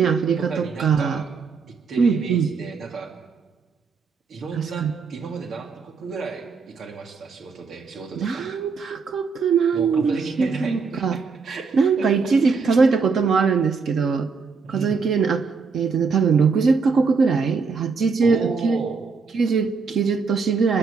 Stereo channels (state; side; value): quieter; left; 5.0 dB